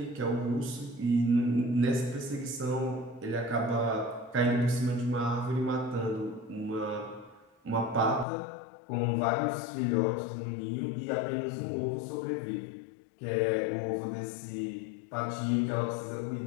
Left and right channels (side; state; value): right; drops out; at 8.2 s